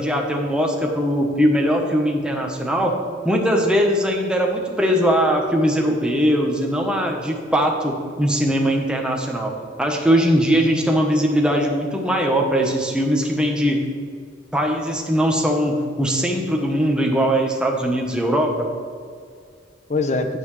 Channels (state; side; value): normal; both; correlation 0.65